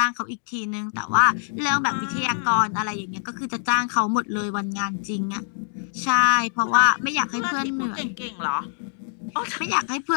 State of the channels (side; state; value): right; silent; digital silence